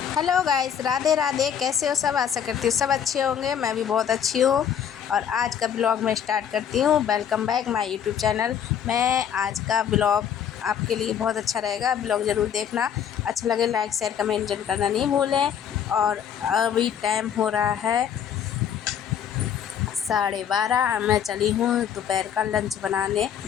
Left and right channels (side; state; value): right; quieter; 8.6 dB